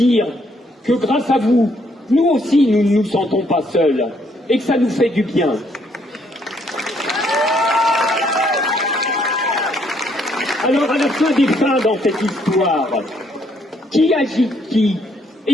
que grâce à vous, nous aussi nous ne nous sentons pas seuls, et que ça nous fait du bien. Alors à la fin des fins dans cette histoire, qui agite qui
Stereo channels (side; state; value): both; normal; correlation 0.70